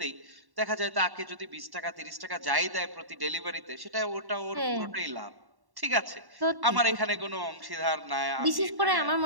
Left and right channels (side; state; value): left; late; 1.1 ms